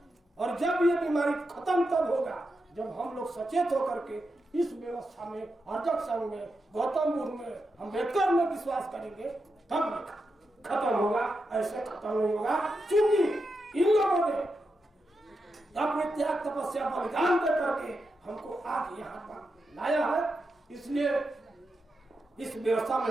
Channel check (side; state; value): both; normal; correlation 0.87